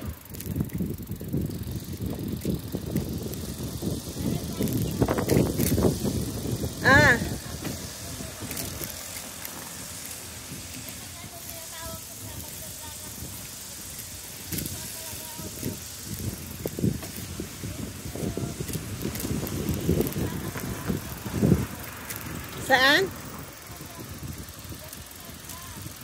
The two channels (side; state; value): both; identical; correlation 1.00